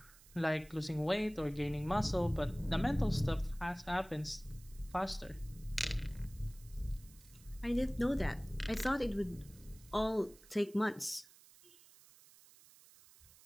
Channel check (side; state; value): right; noise; hiss, 23 dB below the sound